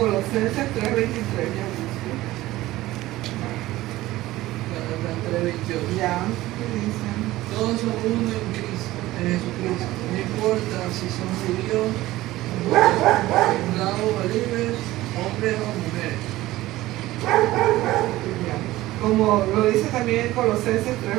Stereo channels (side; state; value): left; quieter; 16.9 dB